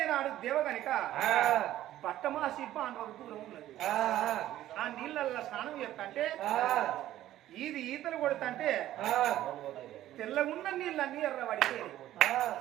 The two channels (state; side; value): quieter; left; 13.6 dB